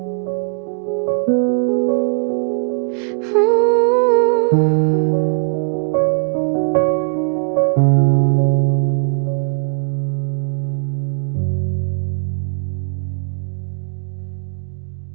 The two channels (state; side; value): silent; left; digital silence